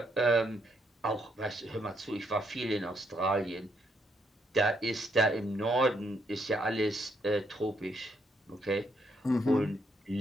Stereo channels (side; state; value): both; normal; correlation 0.74